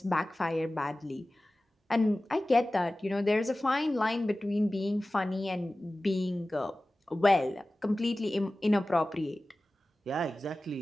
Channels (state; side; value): normal; both; correlation 0.97